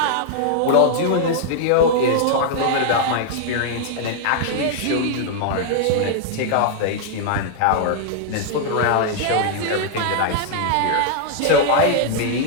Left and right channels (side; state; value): both; different; correlation -0.01